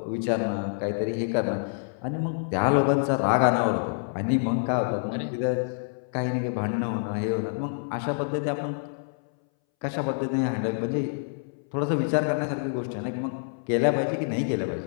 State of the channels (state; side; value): silent; right; 60 dB below the other